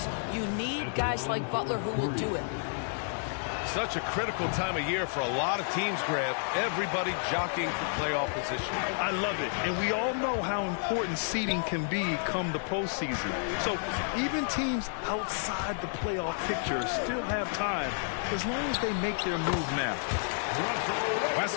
You need guys like Butler who will do it. Such a critical time of year for a lot of teams, Grant. Everybody jockeying for playoff position. I love it. And we all know how important seeding can be come the postseason. So even teams outside the playoff picture still have time as long as they make their move now.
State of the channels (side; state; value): right; silent; digital silence